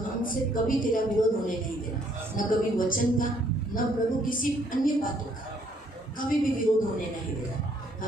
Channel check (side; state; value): both; normal; correlation 0.66